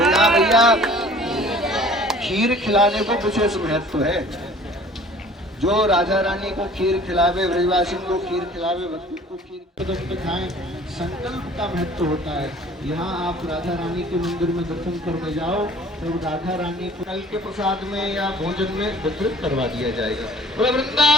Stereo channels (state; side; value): normal; both; correlation 0.50